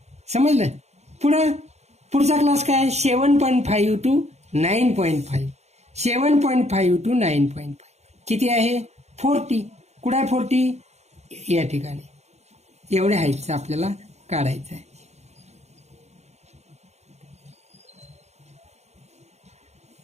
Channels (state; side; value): late; left; 0.32 ms